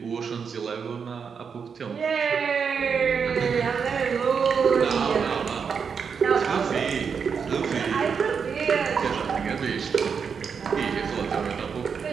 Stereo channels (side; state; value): left; quieter; 6.3 dB